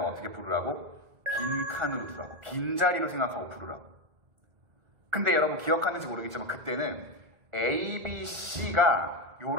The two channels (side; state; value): left; late; 1.4 ms